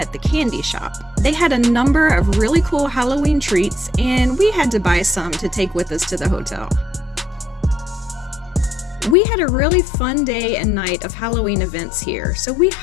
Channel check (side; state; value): right; drops out; at 9.2 s